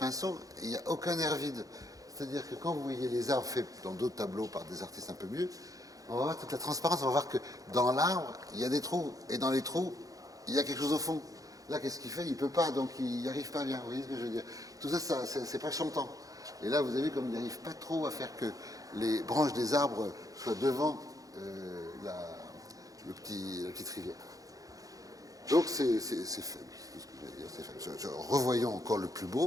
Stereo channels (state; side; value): late; left; 0.17 ms